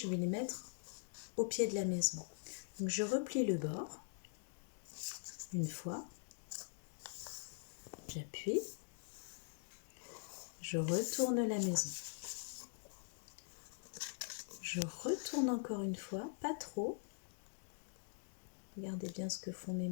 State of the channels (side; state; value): right; silent; digital silence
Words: vais les mettre au pied de la maison. Donc je replie le bord une fois, j'appuie, je retourne la maison. Je retourne encore une fois, pas trop. Regardez bien ce que font mes